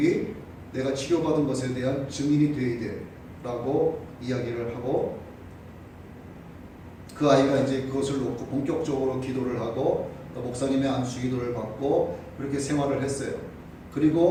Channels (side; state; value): both; identical; correlation 1.00